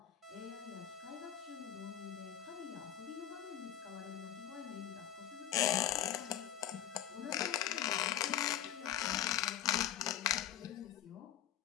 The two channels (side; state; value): right; quieter; 11.3 dB